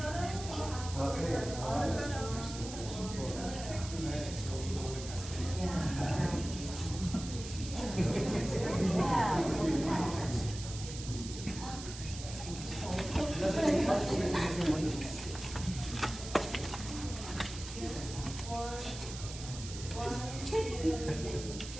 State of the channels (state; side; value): noise; right; hiss, 11 dB below the sound